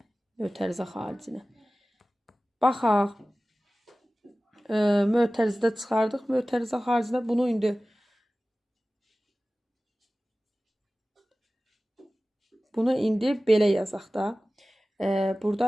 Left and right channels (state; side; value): normal; both; correlation 0.97